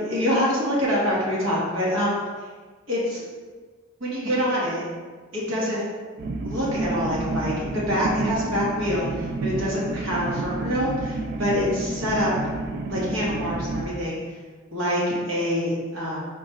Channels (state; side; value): normal; both; correlation 0.30